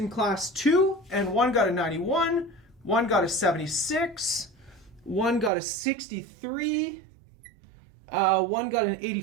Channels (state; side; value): drops out; left; at 5.5 s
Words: class 2, and one got a 91, one got a 76, one got a 63, one got an